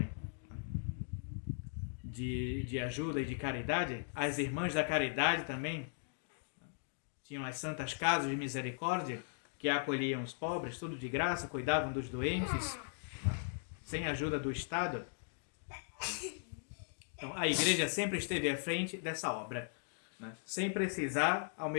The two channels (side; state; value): right; silent; digital silence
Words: de ajuda e de caridade. As irmãs da caridade também tinham as santas casas de misericórdia que acolhiam os pobres, tudo de graça, cuidavam dos doentes, sem ajuda do Estado. Então, a igreja sempre esteve à frente dessa obra, né? Sem precisar, ao